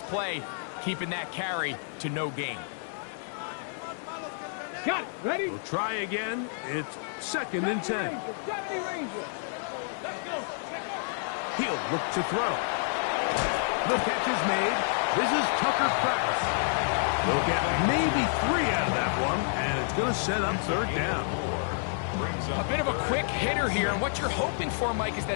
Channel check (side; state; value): right; silent; digital silence